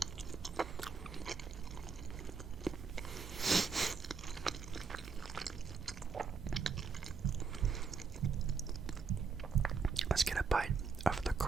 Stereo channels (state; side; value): quieter; left; 5.3 dB